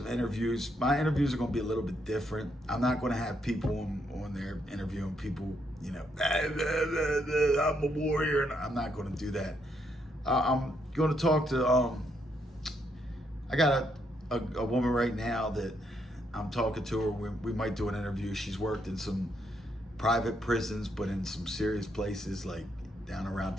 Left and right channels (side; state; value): both; normal; correlation 0.75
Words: interviews. My interviews are going to be a little bit different. I'm not going to have people on there interviewing people, I'm a warrior. And I'm not going to do that. I'm going to talk to, I got a woman right now that I'm talking to her. We might do an interview. She's worked in some private prisons, but in some serious places like down around